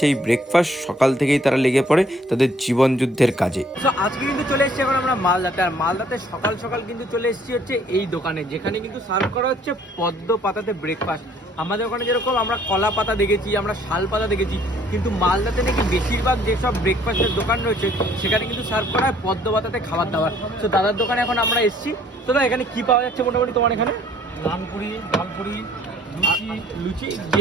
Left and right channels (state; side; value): normal; both; correlation 0.60